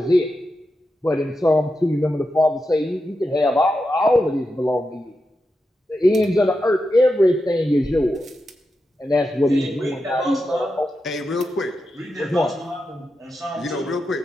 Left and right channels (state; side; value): normal; both; correlation 0.89